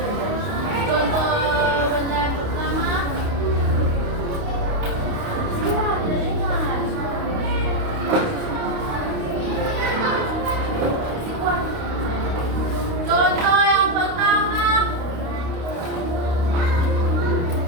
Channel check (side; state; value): left; late; 29 ms